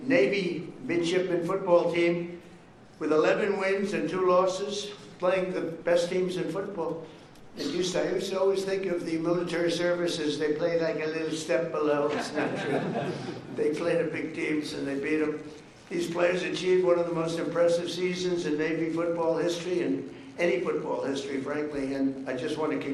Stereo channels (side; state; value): both; identical; correlation 1.00